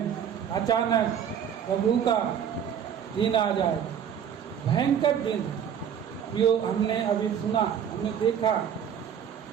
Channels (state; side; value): quieter; left; 8.5 dB